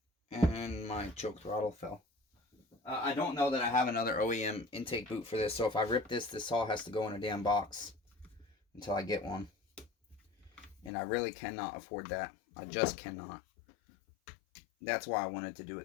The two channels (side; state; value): right; drops out; at 10.9 s